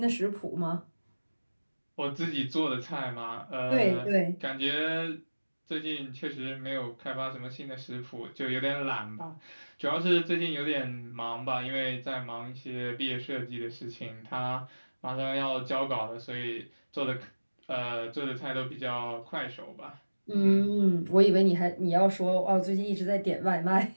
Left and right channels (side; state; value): both; inverted; correlation -1.00